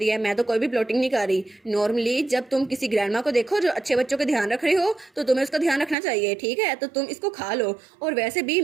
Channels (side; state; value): left; drops out; at 6.0 s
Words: है मैं तो कोई भी प्लॉटिंग नहीं कर रही, नॉर्मली जब तुम किसी ग्रैंडमा को देखो जो अच्छे बच्चों का ध्यान रख रहे हो तो तुम्हें उसका ध्यान रखना चाहिए, ठीक है, तो तुम इसको खा लो, और वैसे भी